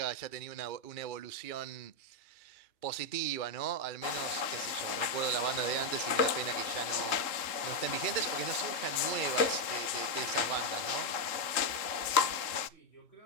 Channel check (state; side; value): late; right; 3.7 ms